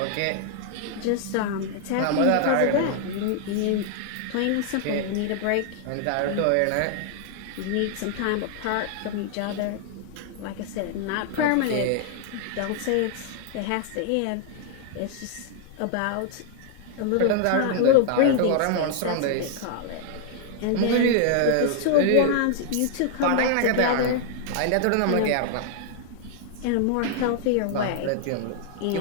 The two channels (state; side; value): different; both; correlation 0.00